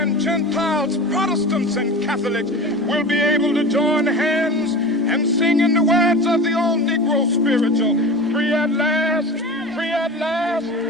Gentiles, Protestants and Catholics, will be able to join hands and sing in the words of the old Negro spiritual, free at last, free at last.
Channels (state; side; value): normal; both; correlation 0.32